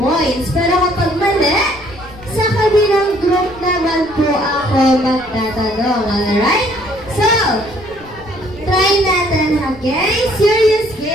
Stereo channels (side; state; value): left; noise; rumble, 22 dB below the sound